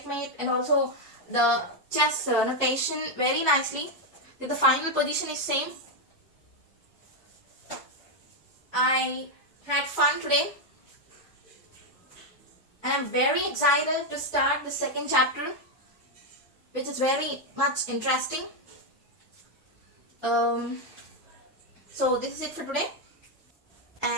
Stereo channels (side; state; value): both; normal; correlation 0.03